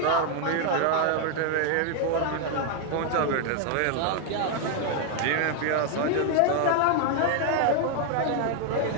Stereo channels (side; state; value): both; different; correlation 0.01